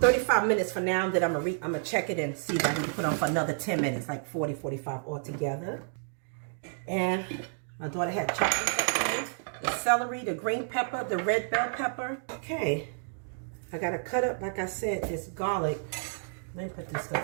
minutes for now. Then I'm going to check it and see if I can put on for another 10 minutes, like 40, 45 altogether. And my daughter had chocolate. the celery, the green pepper, the red bell pepper. Okay, I gotta cut up, like I said, this garlic. Let me put this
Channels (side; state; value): left; silent; digital silence